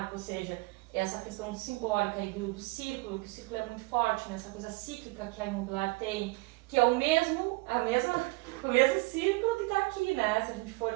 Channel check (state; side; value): quieter; left; 24.4 dB